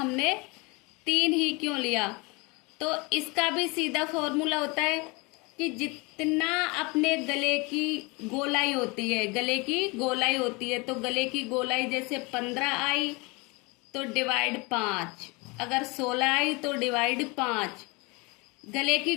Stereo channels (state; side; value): quieter; right; 27.1 dB